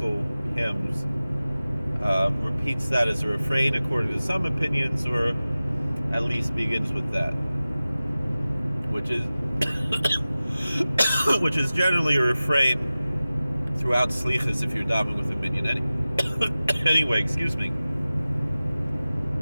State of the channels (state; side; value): inverted; both; correlation -0.96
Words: hymns, repeats that as a refrain according to some opinions, or at least begins with that, which is generally a refrain throughout Slichos if you're davening with a minyan. Anyway, excuse me.